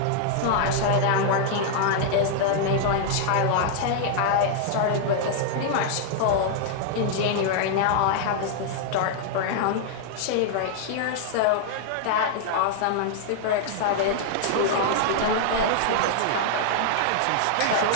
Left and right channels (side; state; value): both; different; correlation -0.01